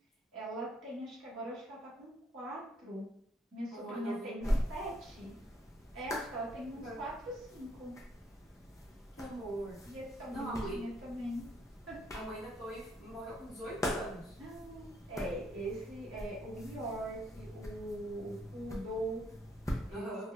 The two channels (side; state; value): both; normal; correlation 0.71